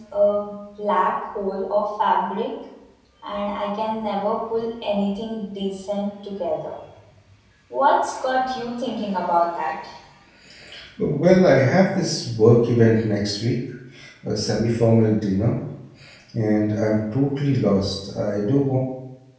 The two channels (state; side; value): identical; both; correlation 1.00